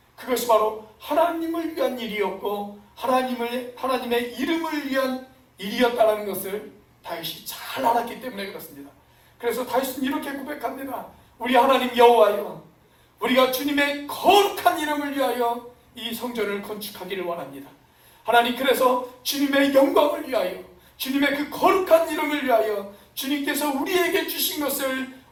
그것이 바로 하나님을 위한 일이었고 하나님의 이름을 위한 일이었다는 것을 다윗이 잘 알았기 때문에 그렇습니다. 그래서 다윗은 이렇게 고백합니다. 우리 하나님 여호와여, 우리가 주님의 거룩한 이름을 위하여 이 성전을 건축하기를 원합니다. 하나님, 그래서 주님의 영광을 위하여, 주님의 그 거룩한 이름을 위하여 주님께서 우리에게 주신 것을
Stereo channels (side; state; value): both; identical; correlation 1.00